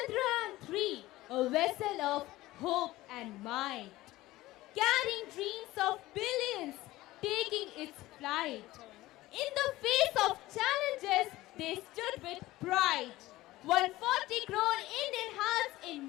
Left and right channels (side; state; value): right; quieter; 17.5 dB